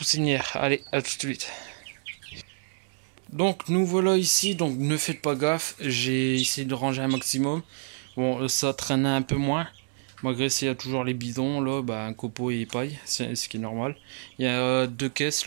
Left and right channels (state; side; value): silent; left; 60 dB below the other